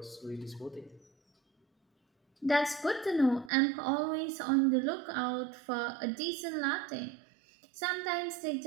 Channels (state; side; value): drops out; left; at 3.5 s